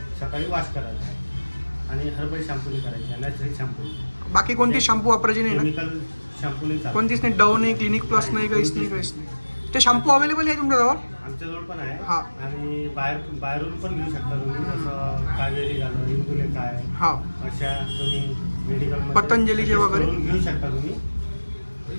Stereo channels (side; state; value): both; inverted; correlation -1.00